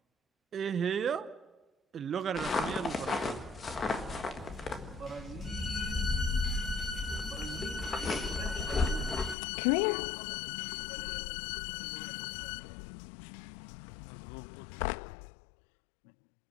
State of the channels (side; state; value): right; drops out; at 9.3 s